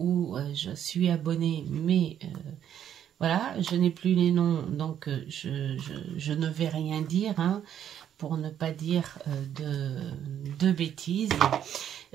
je suis abonnée, mais Voilà, je n'ai plus les noms, donc je ne vais rien dire, hein, pour ne pas dire de bêtises.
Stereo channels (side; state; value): left; quieter; 9.8 dB